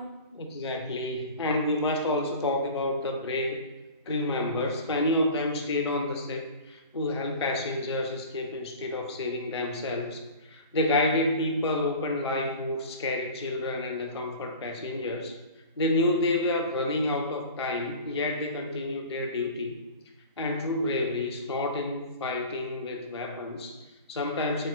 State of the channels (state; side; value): inverted; both; correlation -0.37